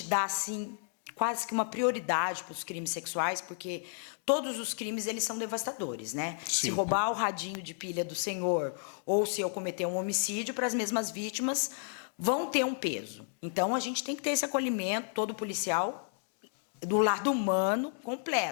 dá, assim, quase que uma prioridade para os crimes sexuais, porque todos os crimes, eles são devastadores, né? Sim. Se roubar o radinho de pilha do senhor ou se eu cometer um homicídio, para as mesmas vítimas vão ter um peso. Então, a gente tem que ter esse acolhimento, todo policial, do lado humano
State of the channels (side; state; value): right; silent; digital silence